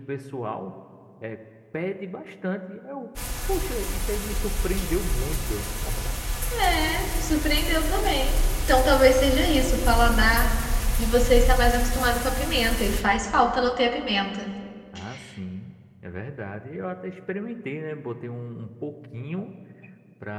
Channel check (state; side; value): identical; both; correlation 1.00